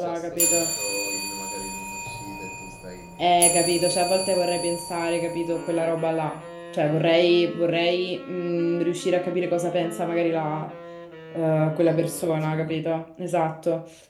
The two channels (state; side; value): identical; both; correlation 1.00